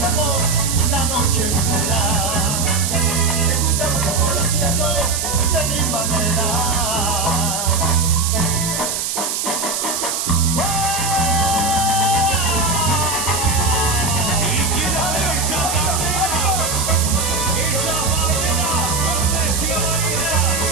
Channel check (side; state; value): right; noise; hiss, 2 dB below the sound